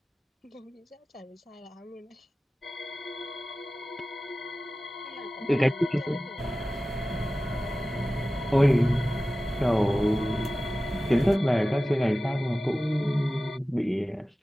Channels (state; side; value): normal; both; correlation 0.96